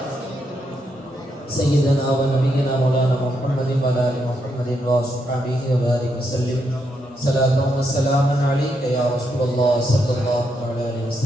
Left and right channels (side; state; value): both; normal; correlation 0.80